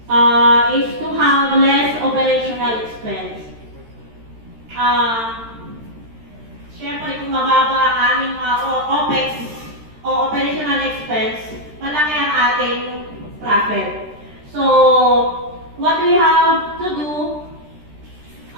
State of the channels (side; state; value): left; late; 13 ms